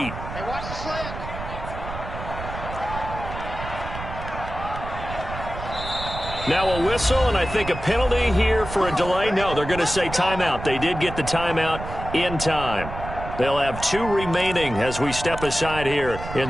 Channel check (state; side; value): noise; right; rumble, 9 dB below the sound